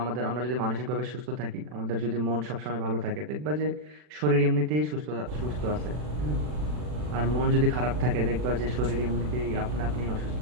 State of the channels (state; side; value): late; left; 40 ms